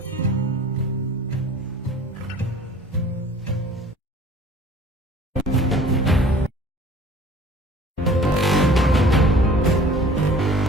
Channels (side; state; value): both; normal; correlation 0.48